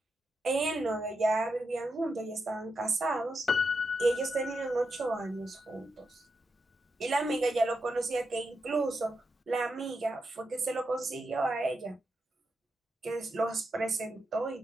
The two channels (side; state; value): both; normal; correlation 0.85